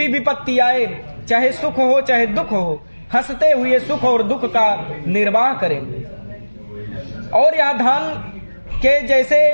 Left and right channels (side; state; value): both; inverted; correlation -1.00